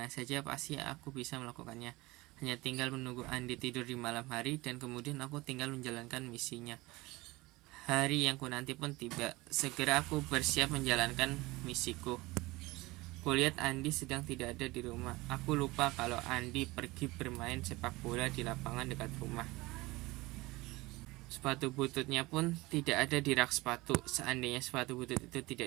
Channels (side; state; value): left; quieter; 21.4 dB